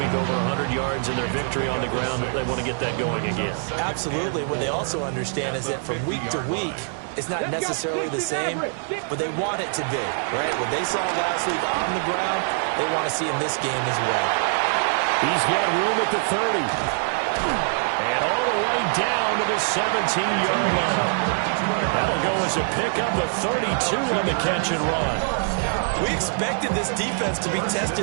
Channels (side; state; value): left; silent; digital silence